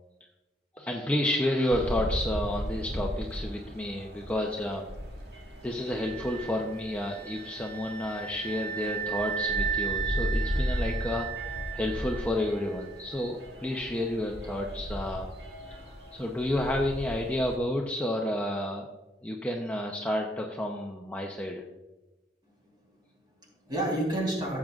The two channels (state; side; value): normal; both; correlation 0.68